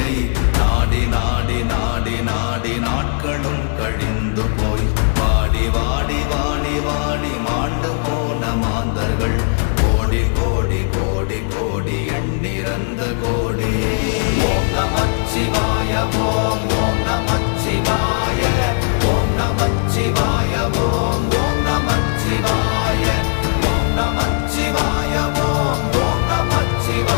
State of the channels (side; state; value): right; silent; 67 dB below the other